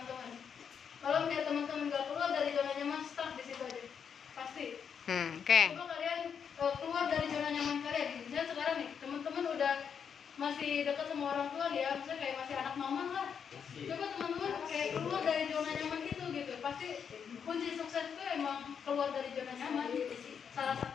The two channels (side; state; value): right; quieter; 7.2 dB